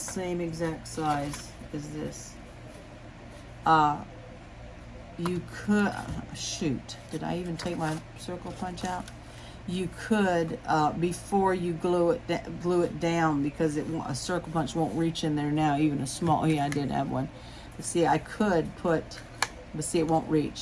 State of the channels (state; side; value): identical; both; correlation 1.00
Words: exact size as this. You could, shoot, did I even take my circle punch out? You could, before you glue it down, because a circle punch won't reach in there now, even a small, yeah, I did have one. But see, I could put, but see, it won't